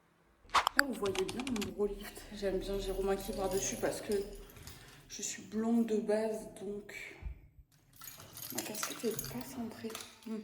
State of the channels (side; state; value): both; identical; correlation 1.00